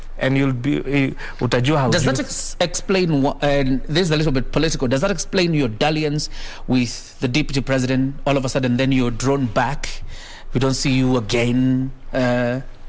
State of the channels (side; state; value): both; identical; correlation 1.00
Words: and you'll be utajua how. Does that explain what, and this is a little bit political, does that explain your dalliance with the deputy president? All of a sudden then you're drawn back, we don't see you again,